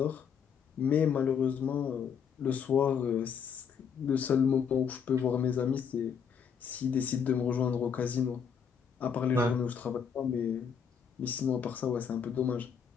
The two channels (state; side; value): quieter; right; 7.1 dB